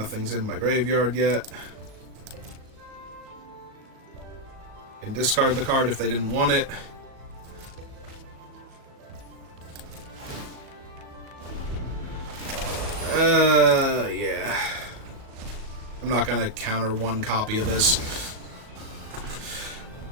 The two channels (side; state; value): left; late; 37 ms